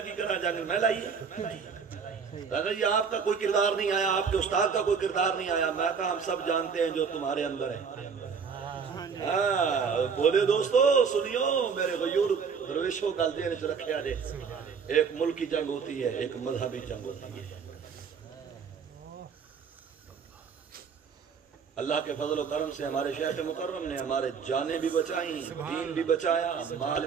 کی کرا جنگ میں لائیے یہ آپ کا کوئی کردار نہیں آیا, آپ کے استاد کا کوئی کردار نہیں آیا. میں کہا ہم سب جانتے ہیں جو تمہارے اندر ہے. بولے دوستو سنیو میرے غیور درویشوں گل دین چ رکھیا جے, ایک ملکی جنگ ہوتی ہے, ایک مذہبی جنگ ہوتی ہے. اللہ کے فضل و کرم سے ہمارے شیخ مکرم نے ہمارے جانیں بھی بچائیں, دین بھی بچایا, مال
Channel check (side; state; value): left; quieter; 6.1 dB